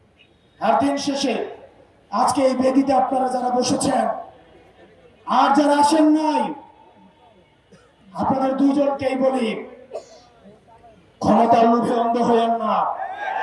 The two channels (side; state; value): both; identical; correlation 1.00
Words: আর দিন শেষে আজকে এই বেদিতে আপনারা যারা বসেছেন আর যারা আসেন নাই, আপনাদের দুইজনকেই বলি, ক্ষমতার লোভে অন্ধ হয়েন না।